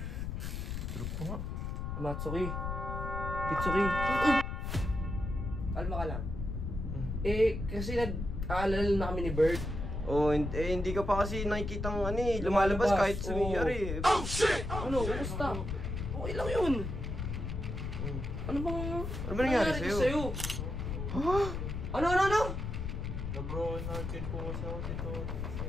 Tulog po nga. Matsuki. Kitsuki. Kalma ka lang. Kasi nag-aalala na kami ni Bert. Oh, hindi ka pa kasi nakikitang lumalabas kahit sumiyari. Oh shit! Ano? Kumusta? Okay lang yun. Ano ba nangyari sa'yo? Ha? Ano? Na-bro natin po kasi ako dito.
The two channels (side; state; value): left; noise; rumble, 4 dB below the sound